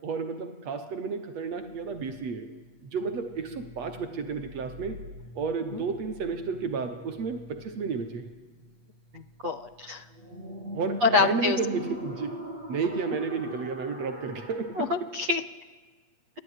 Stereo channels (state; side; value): late; left; 8.3 ms